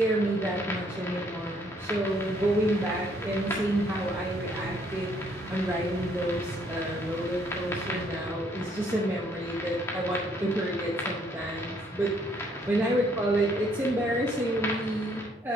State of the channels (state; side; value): normal; both; correlation 0.66